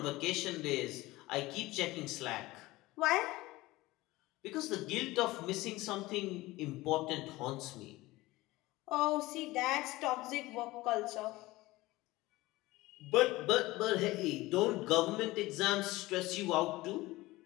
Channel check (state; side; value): quieter; right; 19.4 dB